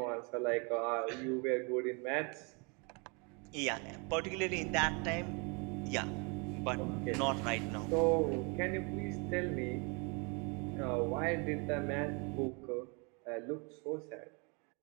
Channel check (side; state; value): left; quieter; 32.6 dB